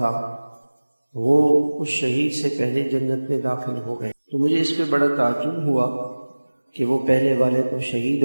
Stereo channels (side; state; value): both; inverted; correlation -1.00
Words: وہ اس شہید سے پہلے جنت میں داخل ہو گئے، تو مجھے اس پہ بڑا تعجب ہوا کہ وہ پہلے والے تو شہید